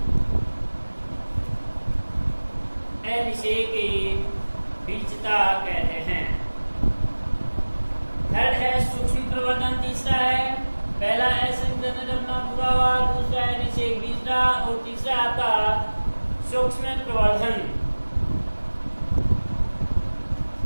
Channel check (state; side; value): inverted; both; correlation -1.00